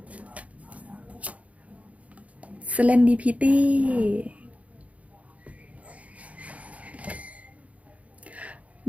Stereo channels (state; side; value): late; left; 0.067 ms